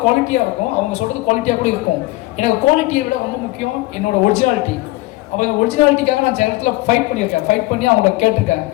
குவாலிட்டியாக இருக்கும், அவங்க சொல்கிறது குவாலிட்டியாக கூட இருக்கும். எனக்கு குவாலிட்டியை விட ரொம்ப முக்கியம் என்னோட ஒரிஜினாலிட்டி. அப்போ இந்த ஒரிஜினாலிட்டிக்காக நான் சில இடத்துல ஃபைட் பண்ணியிருக்கேன், ஃபைட் பண்ணி அவங்கள கேட்டிருக்கேன்.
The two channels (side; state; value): right; quieter; 20.1 dB